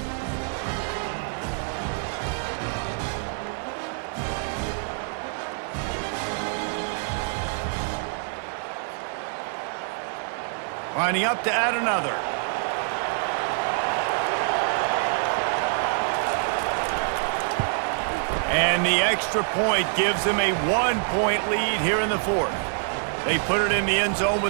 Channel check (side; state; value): left; silent; 60 dB below the other